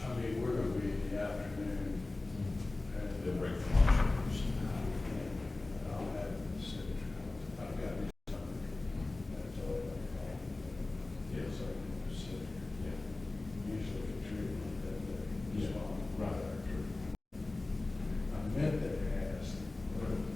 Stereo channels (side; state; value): right; quieter; 3.1 dB